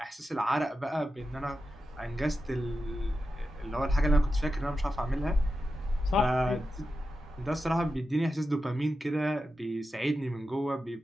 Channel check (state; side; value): normal; both; correlation 0.90